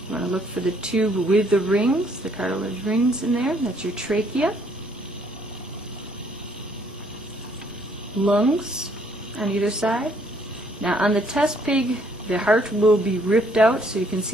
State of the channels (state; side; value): normal; both; correlation 0.65